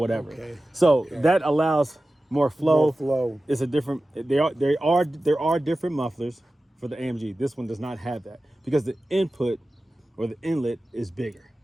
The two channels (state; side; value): normal; both; correlation 0.95